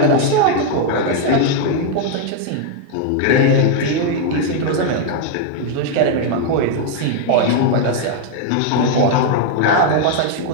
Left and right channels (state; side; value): different; both; correlation 0.00